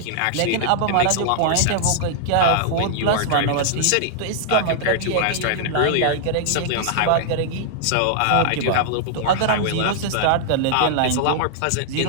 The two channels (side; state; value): both; different; correlation -0.01